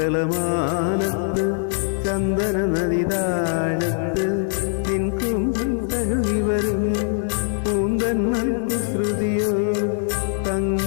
ചന്ദ്രക്കലമാനത്ത് ചന്ദന നദിതാഴത്ത് നിൻ കൂന്തൽ കഴുകി വരും പൂന്തന്മൽ കുസൃതിയോ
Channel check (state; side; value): silent; right; 64 dB below the other